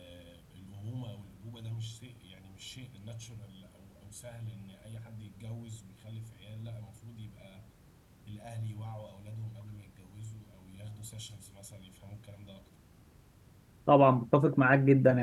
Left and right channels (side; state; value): both; identical; correlation 1.00